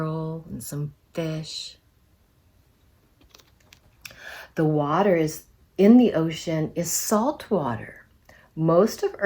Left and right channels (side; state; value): both; identical; correlation 1.00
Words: and some fish. The water is in the ocean is salt water. Most of